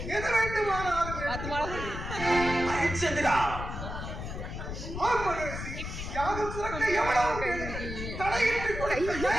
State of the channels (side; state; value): left; noise; rumble, 7 dB below the sound